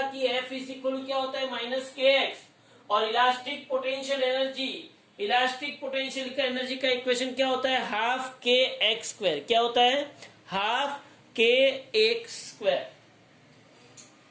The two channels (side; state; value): both; identical; correlation 1.00